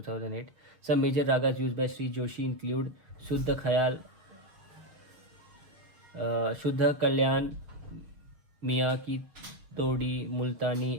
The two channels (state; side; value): late; left; 6.6 ms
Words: Some major ragas used by Shri Joshi include Shuddh Khayal, Shuddh Kalyan, Miyan ki Todi,